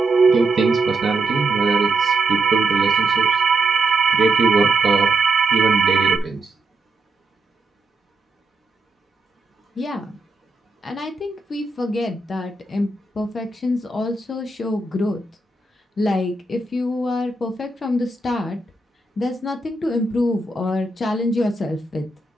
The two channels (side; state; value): left; quieter; 3.1 dB